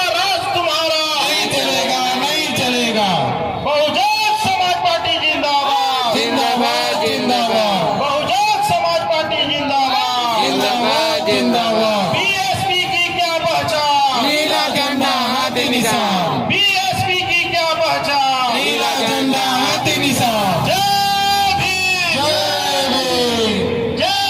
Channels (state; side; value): identical; both; correlation 1.00